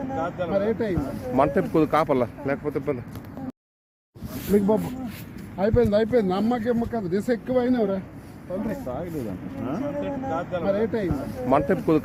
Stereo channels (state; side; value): identical; both; correlation 1.00